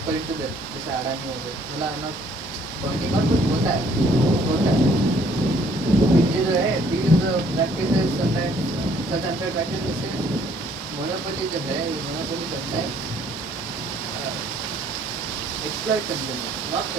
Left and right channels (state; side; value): normal; both; correlation 0.62